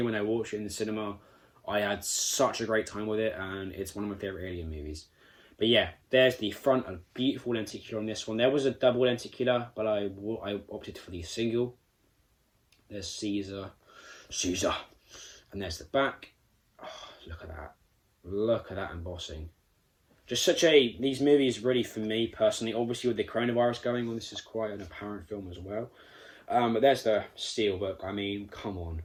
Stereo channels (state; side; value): identical; both; correlation 1.00